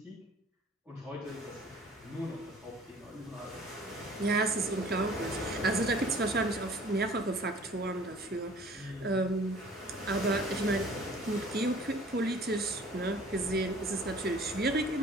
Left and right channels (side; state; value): both; normal; correlation 0.50